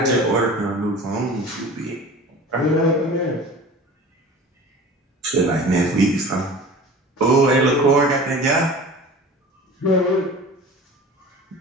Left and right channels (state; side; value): normal; both; correlation 0.39